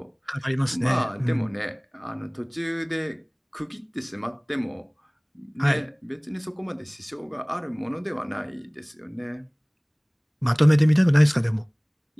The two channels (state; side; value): identical; both; correlation 1.00